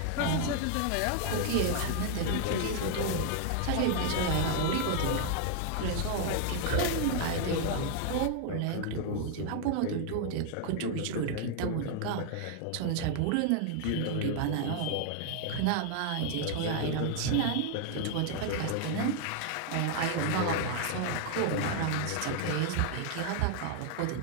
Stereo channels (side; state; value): both; different; correlation 0.00